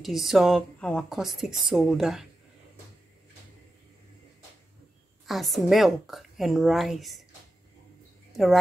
our caustic soda as milk and rice, the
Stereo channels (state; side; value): normal; both; correlation 0.91